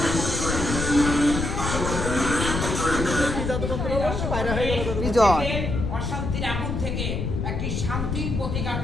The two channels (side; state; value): left; noise; rumble, 2 dB below the sound